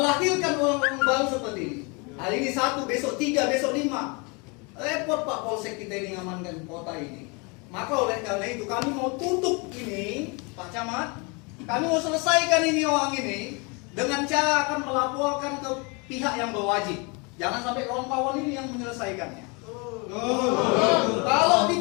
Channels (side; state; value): right; quieter; 30.4 dB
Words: orang-orang baru seperti ini. Hari ini 1, besok 3, besok 5. Repot Pak Polsek kita ini ngamankan kota ini. Maka oleh karena itu kami mau tutup ini, Pak Camat. Kami mau selesaikan ini orang ini dengan cara akan melaporkan ke pihak yang berwajib. Jangan sampai kawan-kawan ini yang menyelesaikannya. Kalau